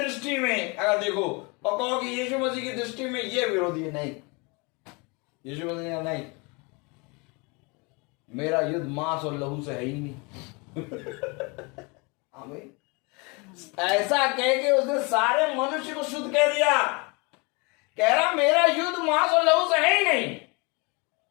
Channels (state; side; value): quieter; right; 29.3 dB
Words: में अगर देखो और कहो कि यीशु मसीह की दृष्टि में ये विरोधी है, नहीं। यीशु मसीह नहीं, मेरा युद्ध मांस और लहू से है ही नहीं। आमीन। ऐसा कह के उसने सारे मनुष्य को शुद्ध कह दिया। कह रहा मेरा युद्ध मांस और लहू से है ही नहीं,